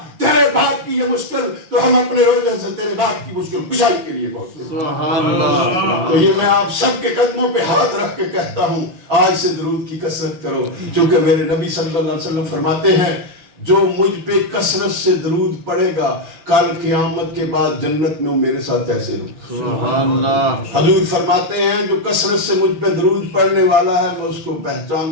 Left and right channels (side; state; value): left; late; 5.9 ms